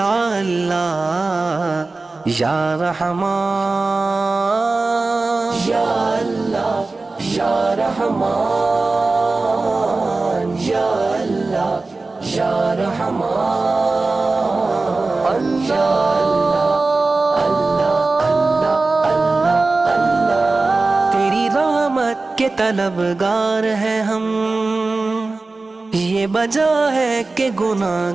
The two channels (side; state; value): left; quieter; 3.5 dB